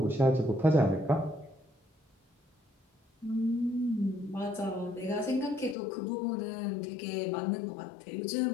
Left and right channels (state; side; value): drops out; right; at 5.8 s